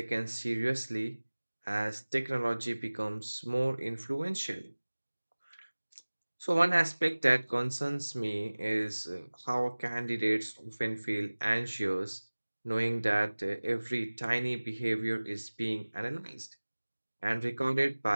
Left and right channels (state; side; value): inverted; both; correlation -1.00